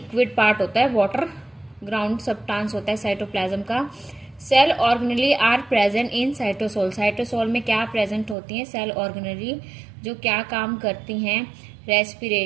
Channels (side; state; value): left; drops out; at 8.3 s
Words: पार्ट होता है, वाटर ग्राउंड सब्सटेंस होता है साइटोप्लाज्म का। Cell organelle are present in cytosol. Cytosol में क्या प्रेजेंट होती हैं? सेल ऑर्गेनेली, जो क्या काम करती हैं?